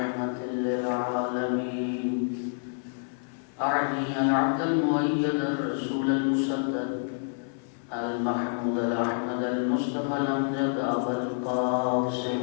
للعالمين أعني العبد المؤيد الرسول المسدد المحمود الأحمد المصطفى الأمجد أبا القاسم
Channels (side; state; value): right; silent; 59 dB below the other